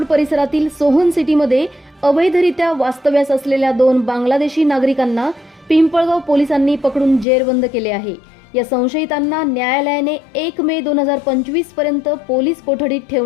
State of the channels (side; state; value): right; drops out; at 7.2 s